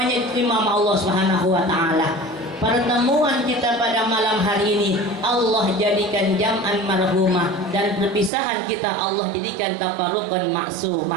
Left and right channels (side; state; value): left; drops out; at 8.3 s